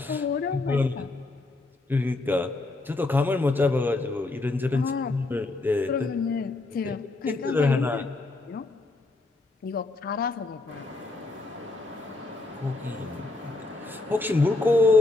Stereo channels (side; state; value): right; quieter; 3.2 dB